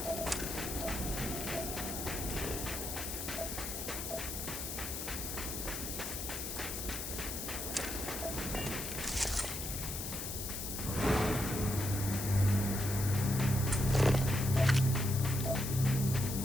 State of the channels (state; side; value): noise; left; hiss, 5 dB below the sound